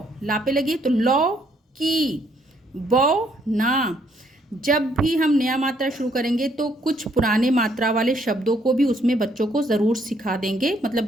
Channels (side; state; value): both; normal; correlation 0.69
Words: ला पे लगी तो लौ की, बौ, ना, जब भी हम नया मात्रा शुरू करेंगे तो कुछ पुराने मात्रा वाले शब्दों को भी उसमें बच्चों को ज़रूर सिखा देंगे,